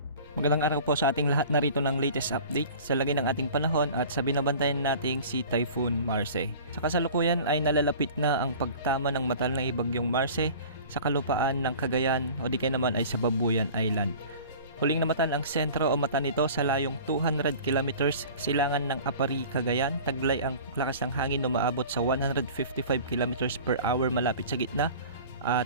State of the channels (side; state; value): both; inverted; correlation -0.42